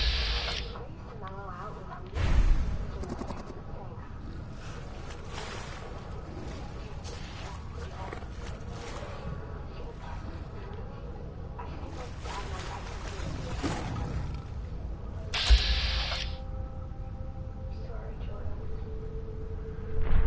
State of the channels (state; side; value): identical; both; correlation 1.00